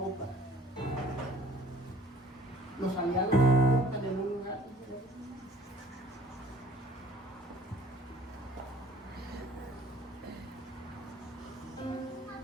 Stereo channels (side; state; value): both; normal; correlation 0.52